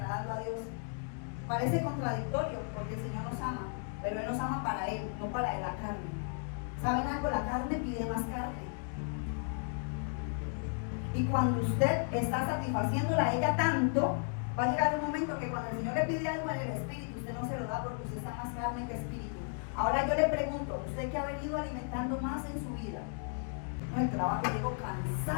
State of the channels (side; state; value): right; silent; 55 dB below the other